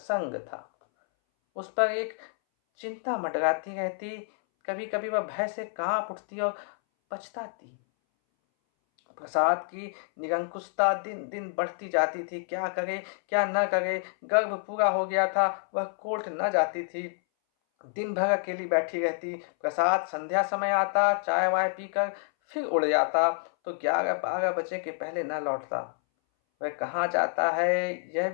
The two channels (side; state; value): right; silent; 59 dB below the other